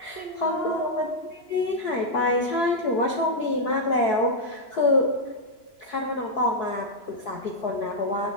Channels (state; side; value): late; right; 2.9 ms